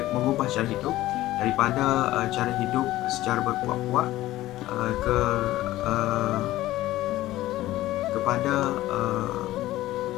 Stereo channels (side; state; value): right; quieter; 15.9 dB